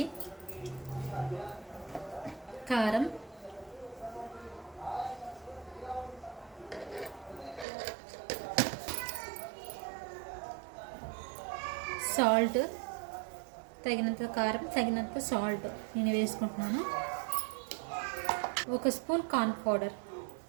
కారం, సాల్ట్, తగినంత కారం, తగినంత సాల్ట్ నేను వేసుకుంటున్నాను. 1 స్పూన్ కార్న్ పౌడర్,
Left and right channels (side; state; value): left; drops out; at 7.7 s